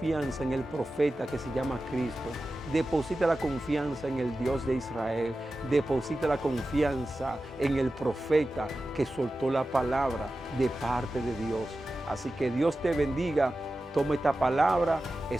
en el profeta que se llama Cristo. Deposita la confianza en el Dios de Israel. Deposita la confianza en el profeta que soltó la palabra de parte de Dios. Así que Dios te bendiga. Toma esta palabra,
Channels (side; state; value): both; normal; correlation 0.94